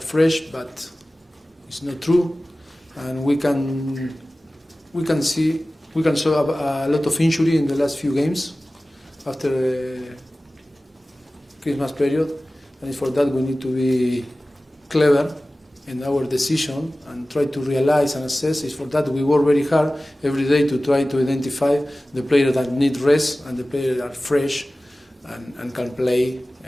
but it's not true, and we can show a lot of injury in the last few games after the Christmas period, and for that we need to be clever in our decision and try to realize and assess. It's for that we work very hard every day to try to identify the players that need rest and the players that are fresh and can play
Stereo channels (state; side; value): normal; both; correlation 0.97